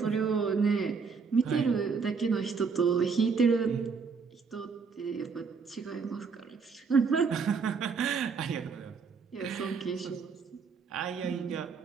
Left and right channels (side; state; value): left; quieter; 5.3 dB